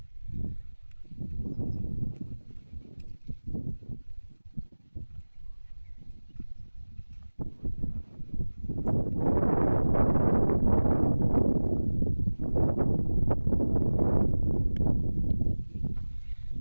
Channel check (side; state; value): both; inverted; correlation -1.00